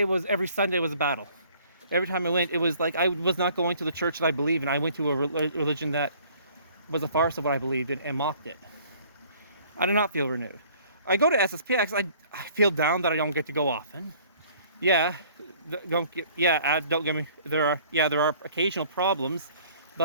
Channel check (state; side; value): inverted; both; correlation -0.55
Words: Sunday was a battle. Every time I went, it was like I was not going to the church that I believed in. I went to a religion that was a farce of what I believed in and mocked it. I did not feel renewed. I go to SSPX, I feel down that I don't get to go often. Yeah, don't get, yeah, don't get me, there are occasional problems,